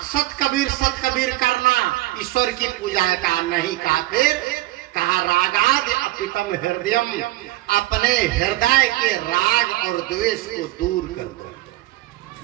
सत कबीर करना ईश्वर की पूजा का नहीं कहा। फिर कहा रागाद अपितम हृदयम, अपने हृदय के राग और द्वेष को दूर कर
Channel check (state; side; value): quieter; left; 18.1 dB